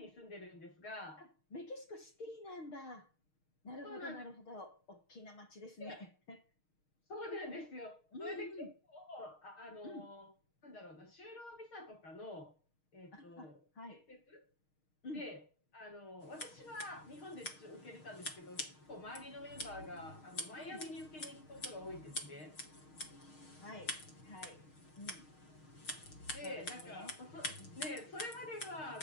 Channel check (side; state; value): right; late; 6.4 ms